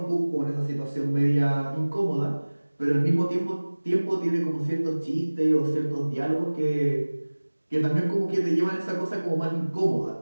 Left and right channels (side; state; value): both; inverted; correlation -1.00